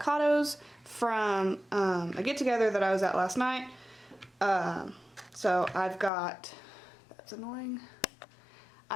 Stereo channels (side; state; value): right; drops out; at 6.1 s